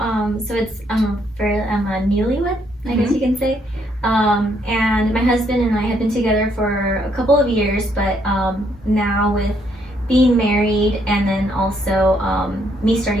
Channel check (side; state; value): both; normal; correlation 0.72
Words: So it's I'm a newlywed, I guess you can say. And my husband and I have been together for a couple of years, but now with being married and then also me